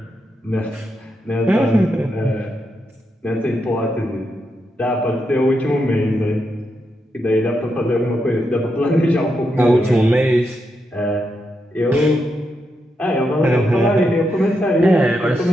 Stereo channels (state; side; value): normal; both; correlation 0.84